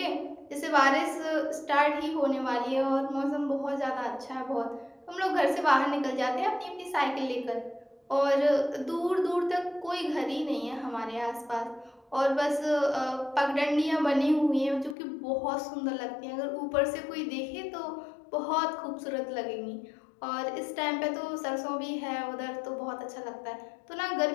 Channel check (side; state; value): right; drops out; at 15.0 s